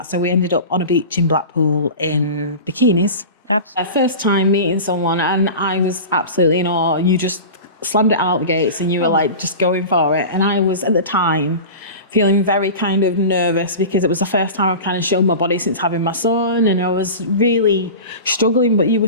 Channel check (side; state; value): both; inverted; correlation -0.32